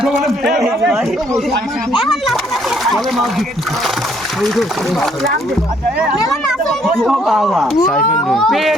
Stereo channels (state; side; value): normal; both; correlation 0.66